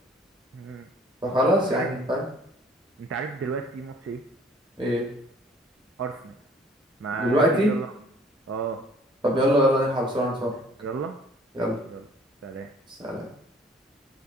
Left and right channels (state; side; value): normal; both; correlation 0.55